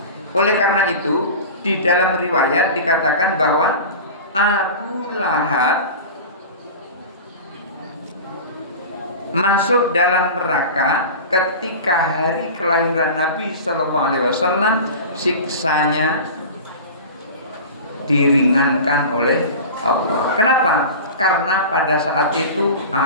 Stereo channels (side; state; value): both; inverted; correlation -0.33